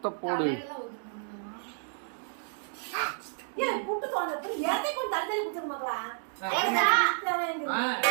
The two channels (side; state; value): left; silent; digital silence